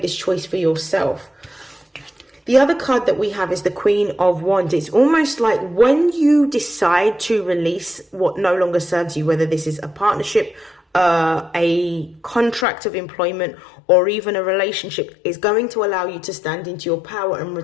this choice for yourself. The other card that we have is the Queen of Wands. It's almost like when you decide to release what no longer serves you, whether this is a partnership, a contract of employment, or even a relationship, is going to allow you to stand into your power and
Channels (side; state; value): right; drops out; at 12.7 s